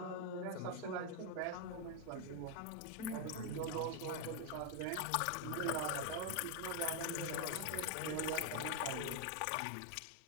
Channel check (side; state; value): both; different; correlation 0.01